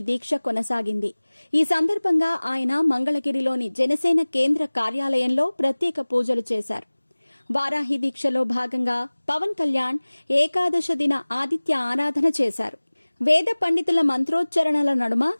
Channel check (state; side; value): inverted; both; correlation -1.00